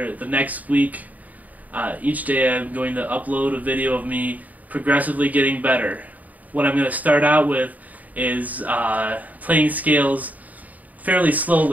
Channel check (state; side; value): late; left; 0.076 ms